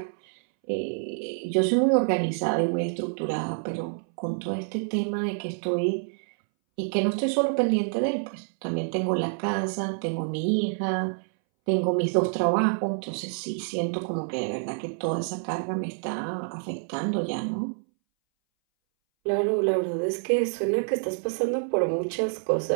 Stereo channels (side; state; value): left; silent; 60 dB below the other